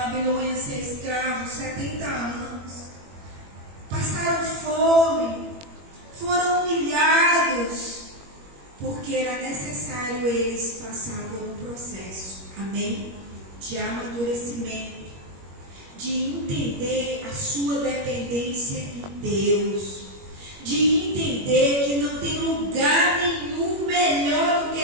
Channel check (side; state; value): left; late; 21 ms